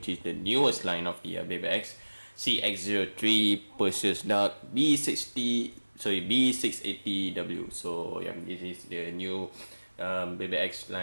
is the newest line of the Beyblade X CX-03 Perseus Dark B680W. So yeah, this is the new Beyblade X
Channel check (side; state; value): both; inverted; correlation -1.00